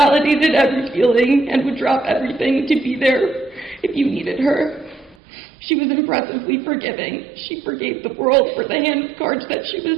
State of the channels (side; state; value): left; drops out; at 5.2 s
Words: every feeling and would drop everything to be there if you needed her. She was impressively forgiving. She forgave the world for the hand of cards that she